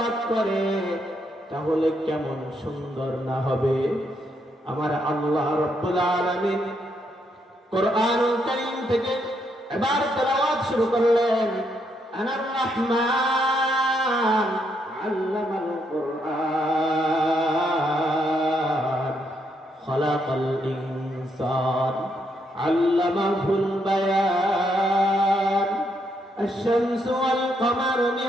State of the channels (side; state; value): both; normal; correlation 0.76